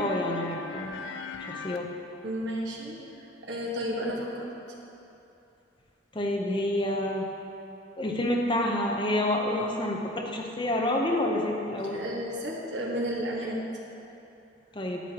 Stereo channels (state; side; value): normal; both; correlation 0.42